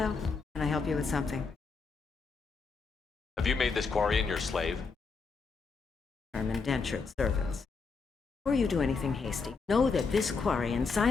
can I help you with something? Have you made this Quarian your slave? Term indentured servants. Before you do anything hasty, know that this Quarian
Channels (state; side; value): quieter; right; 4.8 dB